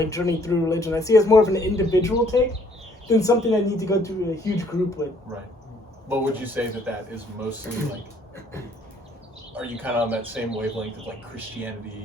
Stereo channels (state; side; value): normal; both; correlation 0.63